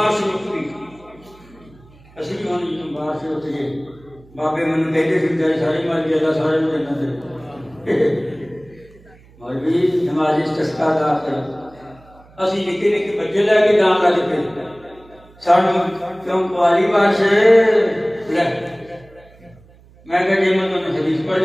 وقتی اسی بھی ہونے جنہوں بارش ہوتی ہے، بابے منو کہتے پھر جائے ساری مال جیدہ سارے میں دینا دے مولوی نماز استسقا دا کر اسی نکے نکے بچے لے کے جان لگ پہ سانو کیوں پوالی بارش لے میں کہا جی میں تمہیں حدیث پڑھ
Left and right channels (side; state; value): right; noise; hum, 26 dB below the sound